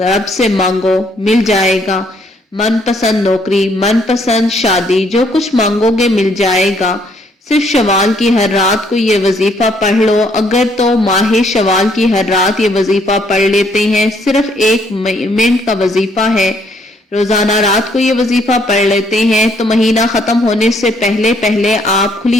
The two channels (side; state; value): both; normal; correlation 0.67